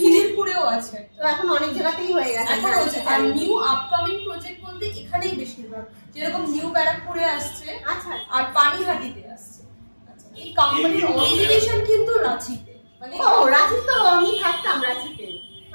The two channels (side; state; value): both; inverted; correlation -1.00